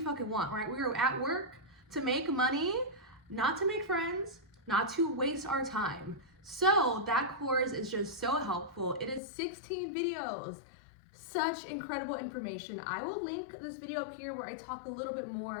want, right? We are at work to make money, not to make friends, not to waste our time. So that course is just so helpful. It is 16 videos. Such incredible information. I will link this video up here where I talk a little bit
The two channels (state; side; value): drops out; right; at 9.2 s